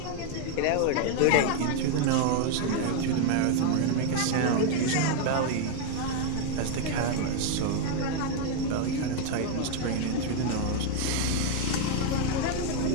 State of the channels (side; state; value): both; different; correlation 0.00